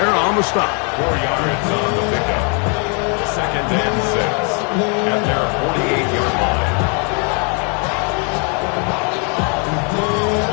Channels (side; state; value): right; quieter; 37.7 dB